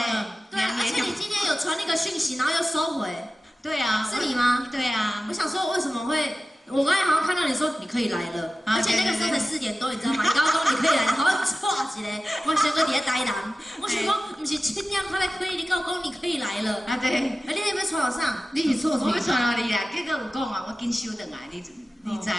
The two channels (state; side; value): normal; both; correlation 0.95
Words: 对，而且你今天有传那个讯息，然后又收回。对啊，是你吗？对啊，我想说为什么会？我刚才好像看到你说你可以来了，而且那个时候才4点多，你知道吗？你刚刚说你可以来，好像错一个，我想说你在台南，我想讲不是7点才来可以，你跟我讲你可以来了。啊对，你有没有传到上？你是错，我要传到你啦，结果有讲啊，我紧收回来，你知无？